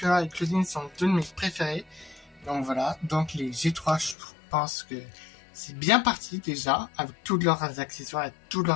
et Claudine sont deux de mes préférés. Donc voilà, donc les G3, je pense que c'est bien parti déjà avec tous leurs accessoires et tous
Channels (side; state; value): right; drops out; at 4.2 s